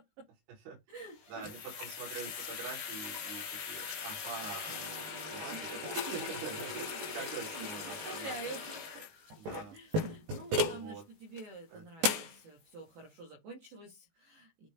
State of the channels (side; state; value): left; late; 19 ms